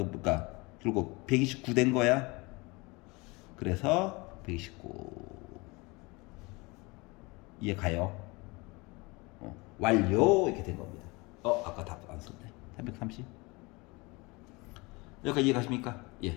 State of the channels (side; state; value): right; quieter; 25.5 dB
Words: 결국 129 된 거야. 그래서 129 이해 가요? 완료 이렇게 된 겁니다. 아까 답 안 썼네. 330 여기까지 이해 가십니까?